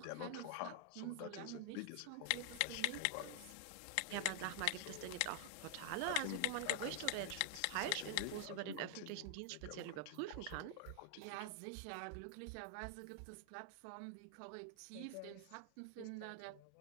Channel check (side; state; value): both; different; correlation 0.00